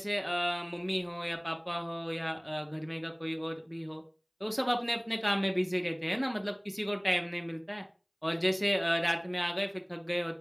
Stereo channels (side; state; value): both; identical; correlation 1.00